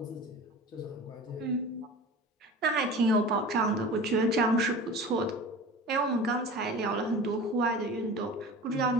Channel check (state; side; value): normal; both; correlation 0.36